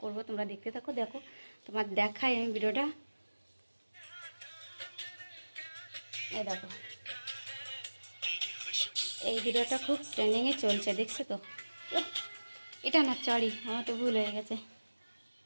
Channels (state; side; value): inverted; both; correlation -1.00